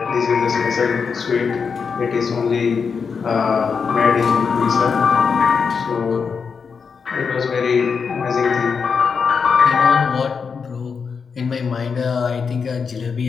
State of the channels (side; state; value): right; quieter; 5.8 dB